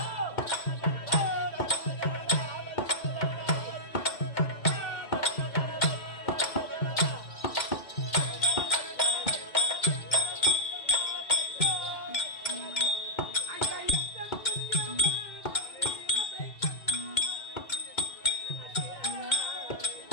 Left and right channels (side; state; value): right; late; 2.2 ms